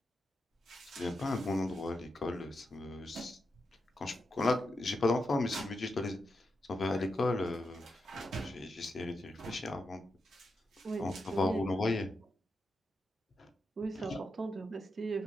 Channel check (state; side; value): normal; both; correlation 0.87